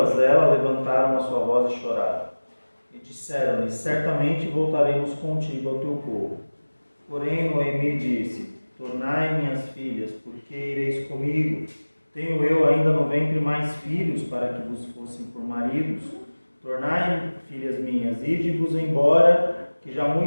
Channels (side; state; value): both; inverted; correlation -1.00